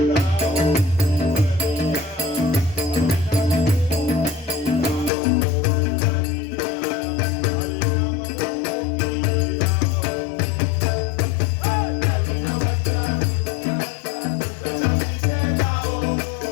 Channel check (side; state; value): right; drops out; at 5.1 s